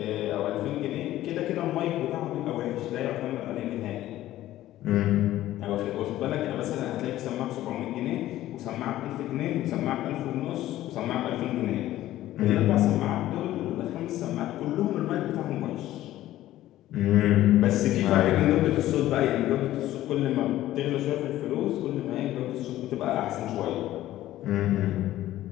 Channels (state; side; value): quieter; right; 14.4 dB